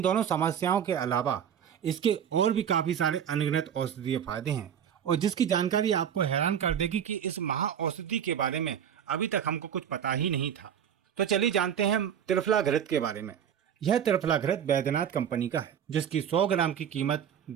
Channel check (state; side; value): quieter; left; 8.8 dB